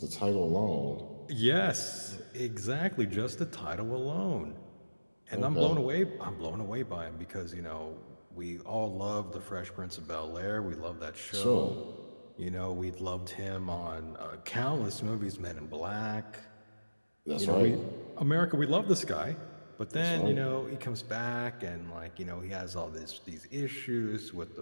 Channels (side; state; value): both; inverted; correlation -1.00